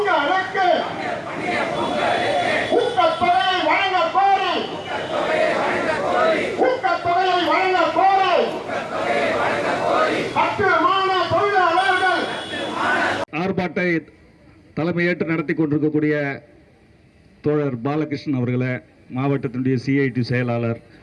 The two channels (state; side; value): identical; both; correlation 1.00